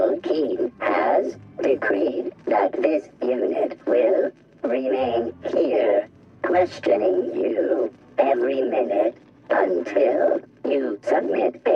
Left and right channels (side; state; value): both; identical; correlation 1.00